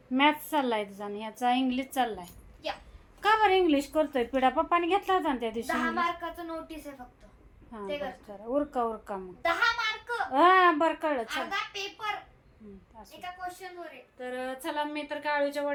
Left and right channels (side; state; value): both; identical; correlation 1.00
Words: मॅथ्स चाललाय तुझा आणि ह्याचा इंग्लिश चाललाय. का बरं इंग्लिश करतोय पिढा? पप्पाने घेतला होता ना त्या दिवशी. 10 मार्काचं नोटीस आहे फक्त. ते उरका मग 10 मार्क. हा बरं कळलं. अर्धा पेपर एका क्वेश्चन वर आहे. तर चला, मी तर काळूच्या